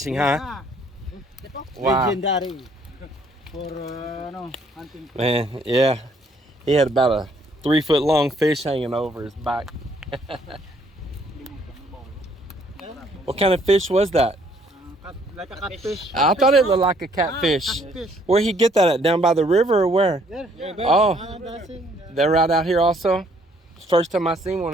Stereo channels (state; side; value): normal; both; correlation 0.65